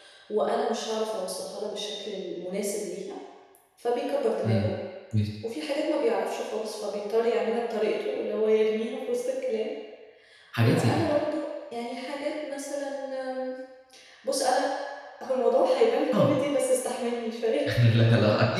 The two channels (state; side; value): identical; both; correlation 1.00